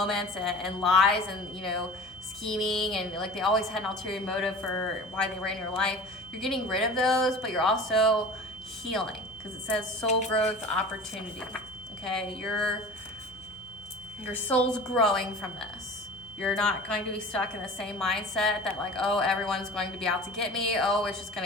and lies and, you know, scheming, and like they always had an ulterior motive for why they were in your life. You're getting rid of those, but you're also healing, because it says soul growth opportunity. Okay, your soul's growing from this. You're not going to be stuck in the same mindset that, like, oh, everyone's going to be out to get me. Oh, it's just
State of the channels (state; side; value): normal; both; correlation 0.38